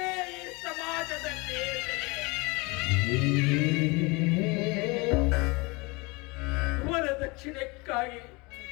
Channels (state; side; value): quieter; right; 26.4 dB